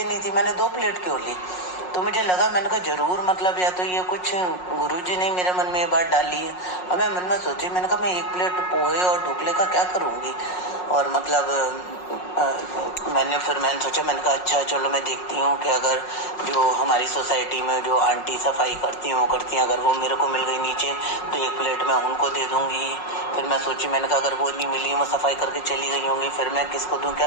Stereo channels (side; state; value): right; late; 5.5 ms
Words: थी, मैंने 2 प्लेट क्यों ली। तो मुझे लगा, मैंने कहा जरूर मतलब या तो ये कुछ गुरुजी ने मेरे मन में ये बात डाली है। अब मैं मन में सोची, मैंने कहा मैं 1 प्लेट पोहे और ढोकले का क्या करूँगी। और मतलब मैंने सोचा, मैंने कहा अच्छा चलो मैं देखती हूँ कि अगर जो हमारी सोसाइटी में जो आंटी सफाई करती हैं वो करती हैं, अगर वो मेरे को मिल गई नीचे तो 1 प्लेट मैं उनको दे दूँगी। फिर मैं सोची, मैंने कहा अगर वो नहीं मिली, वो सफाई करके चली गई होंगी, फिर मैं किसको दूँ क्या।